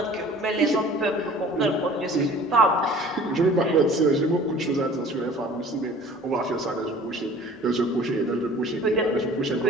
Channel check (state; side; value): normal; both; correlation 0.47